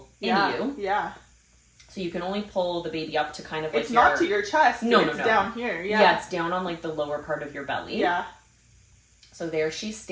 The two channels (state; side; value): identical; both; correlation 1.00